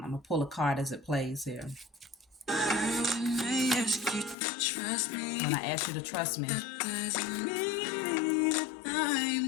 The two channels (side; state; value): right; drops out; at 4.4 s